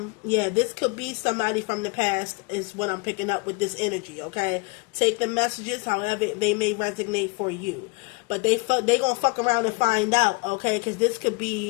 Yeah, this could be somebody from the past is what I'm picking up with this energy, okay? Take the messages however they may resonate for you. But they gonna fuck around and find out, okay? Because this could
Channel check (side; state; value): right; quieter; 29.5 dB